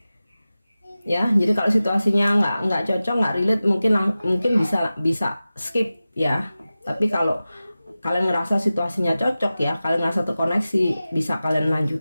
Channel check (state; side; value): inverted; both; correlation -0.95